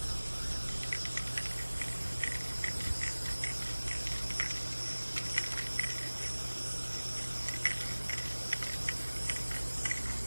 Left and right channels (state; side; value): inverted; both; correlation -1.00